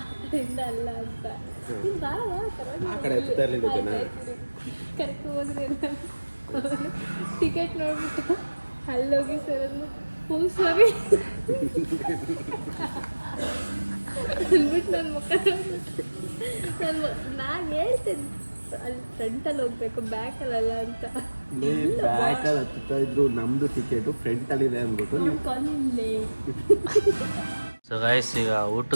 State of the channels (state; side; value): inverted; both; correlation -1.00